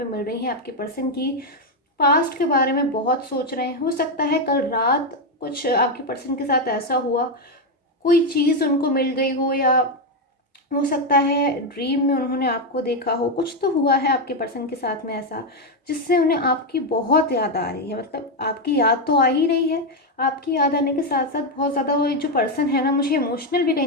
मिल रही है आपके पर्सन की, पास्ट के बारे में बहुत सोच रहे हैं। हो सकता है कल रात कुछ आपके पर्सन के साथ ऐसा हुआ, कोई चीज़ उनको मिल गई हो, या हो सकता है ड्रीम में उन्होंने आपको देखा हो। कुछ तो हुआ है आपके पर्सन के साथ में ऐसा, जिससे उन्हें आपकी बहुत याद आ रही है। मतलब आपकी याद तो आ ही रही है, आपकी याद आने के साथ साथ बहुत ज़्यादा वो जो पर्सन है ना, मुझे इमोशनल भी कहीं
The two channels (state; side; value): normal; both; correlation 0.05